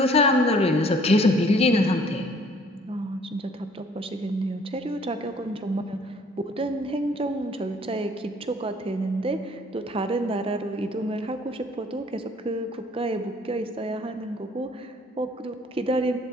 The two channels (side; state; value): both; normal; correlation 0.58